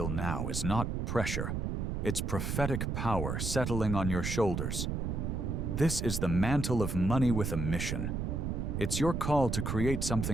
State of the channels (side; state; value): right; noise; rumble, 1 dB below the sound